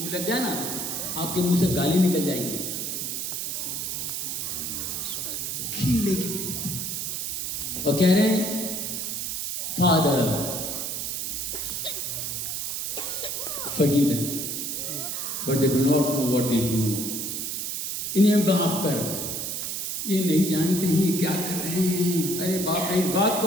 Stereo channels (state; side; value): noise; right; hiss, 3 dB below the sound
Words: लग जाए ना, आपके मुंह से गाली निकल जाएगी। कील लेके बैठे और कह रहे हैं, father forgive them, but they do not know what they do. इन्हें माफ कर, ये नहीं जानते ही क्या कर रहे हैं। अरे बाप रे, इस बात